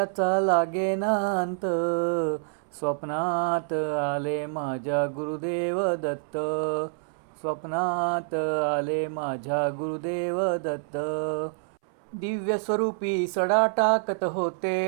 लागेना अंत. स्वप्नात आले माझ्या गुरुदेव दत्त, स्वप्नात आले माझ्या गुरुदेव दत्त. दिव्य स्वरूपी सडा टाकत होते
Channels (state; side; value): silent; left; 60 dB below the other